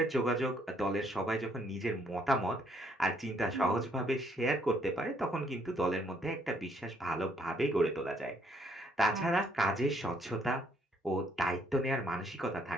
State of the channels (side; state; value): both; normal; correlation 0.68